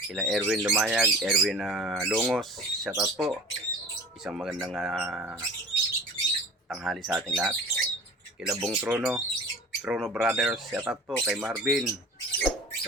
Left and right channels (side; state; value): both; normal; correlation 0.40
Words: Kila Erwin Lumayag, Erwin Longos. Shoutout po. Isang magandang tanghali sa ating lahat. Kila Bong Trono Brothers, shoutout po kay Marvin